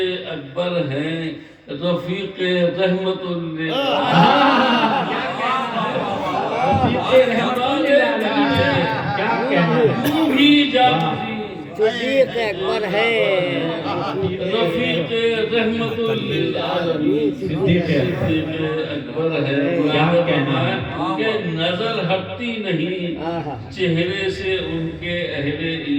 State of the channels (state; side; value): identical; both; correlation 1.00